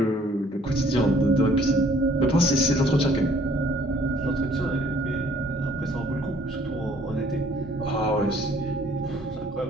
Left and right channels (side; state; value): both; normal; correlation 0.59